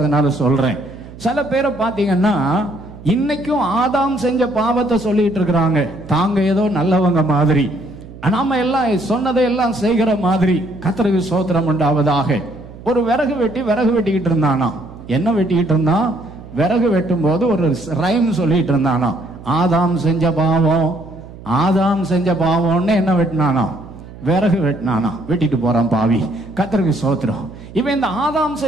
அதனால சொல்றேன். சில பேரை பார்த்தீங்கன்னா இன்னைக்கும் ஆதாம் செஞ்ச பாவத்தை சொல்லிட்டு இருக்கிறாங்க. தாங்க ஏதோ நல்லவங்க மாதிரி, நாம எல்லாம் சொன்னதை எல்லாம் செய்கிற மாதிரி. கர்த்தருக்கு ஸ்தோத்திரம் உண்டாவதாக. ஒரு விறகு வெட்டிக்கிட்டு இருந்தானா. என்ன வெட்டிக்கிட்டு இருந்தான்? விறகு வெட்டும் போது ஒரு ரைம் சொல்லிட்டு இருந்தானா. ஆதாம் செஞ்ச பாவம்னு என்ன வெட்டினானா? விறகு வெட்டினானா. வெட்டிட்டு போறான் பாவி. கர்த்தருக்கு ஸ்தோத்திரம். இவன் இந்த ஆதாம்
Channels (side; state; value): right; noise; hum, 17 dB below the sound